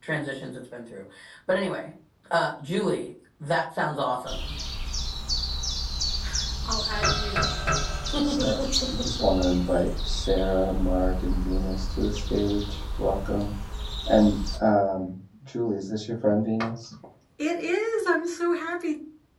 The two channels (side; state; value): both; identical; correlation 1.00